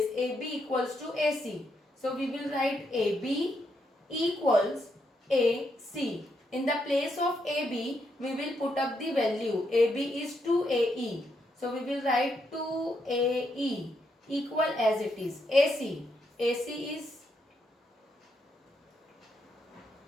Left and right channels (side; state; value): both; normal; correlation 0.79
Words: AB equals to AC. So we will write AB equals AC. In the place of AB, we will put up the value. AB is 2AE. So we will write 2AE equal as it is. AC. AC is